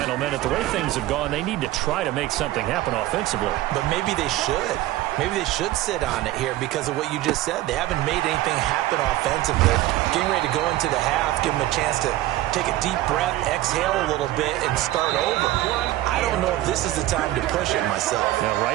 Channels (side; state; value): left; quieter; 15.9 dB